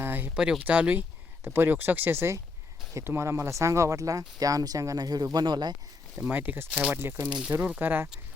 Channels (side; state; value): right; quieter; 4.0 dB